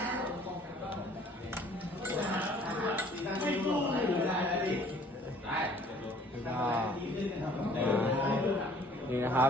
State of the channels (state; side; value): normal; both; correlation 0.55